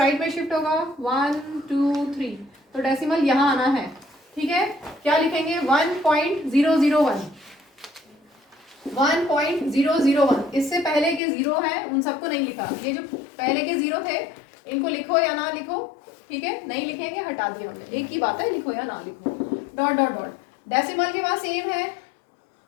में शिफ्ट होगा 1 2 3, तो डेसिमल यहाँ आना है। ठीक है, क्या लिखेंगे 1.001। इससे पहले के 0 है उन सबको नहीं लिखा, ये जो पहले के 0 थे इनको लिखो या ना लिखो। ठीक है, नहीं लिखेंगे, हटा दिया हमने, एक ही बात है, लिखो या ना लिखो डॉट डॉट डॉट। डेसिमल के बाद सेम है,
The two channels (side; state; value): right; drops out; at 11.2 s